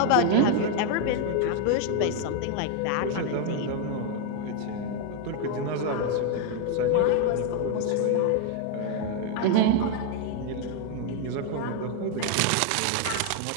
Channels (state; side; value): different; both; correlation 0.01